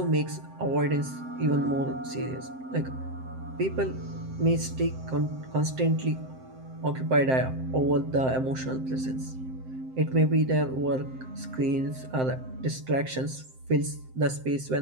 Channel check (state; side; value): late; left; 7.7 ms